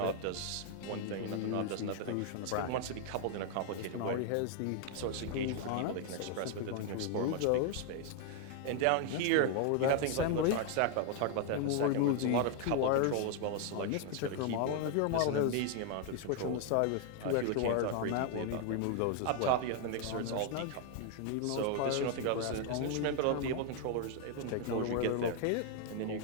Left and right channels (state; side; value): different; both; correlation 0.00